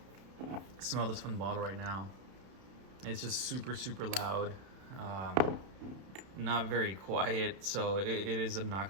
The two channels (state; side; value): late; left; 31 ms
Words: smell this from the bottle right now, it's just super, super loud. Not very quiet, so it is